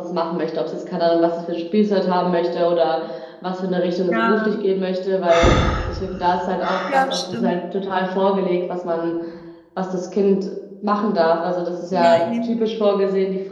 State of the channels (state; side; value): identical; both; correlation 1.00